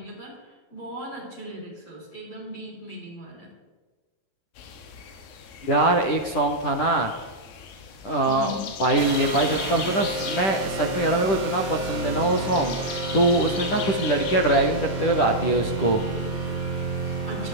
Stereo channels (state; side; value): late; right; 10 ms